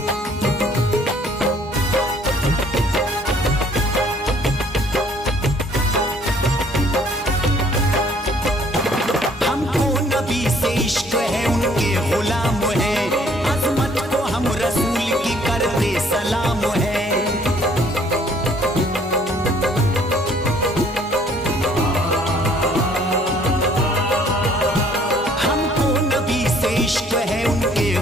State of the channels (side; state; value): both; normal; correlation 0.60